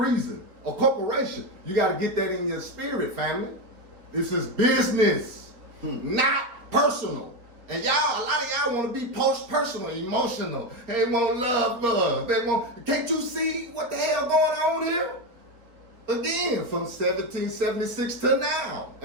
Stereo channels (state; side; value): late; left; 3.9 ms